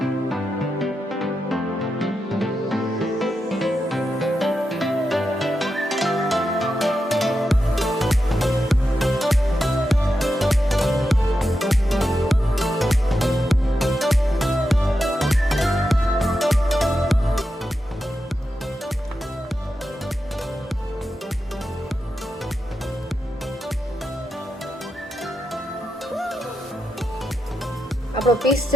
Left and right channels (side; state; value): both; normal; correlation 0.88